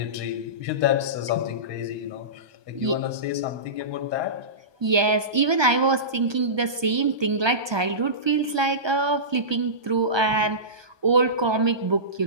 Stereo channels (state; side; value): late; left; 1.2 ms